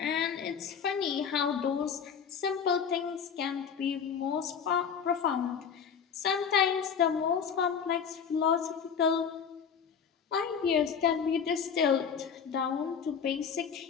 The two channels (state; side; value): quieter; right; 7.0 dB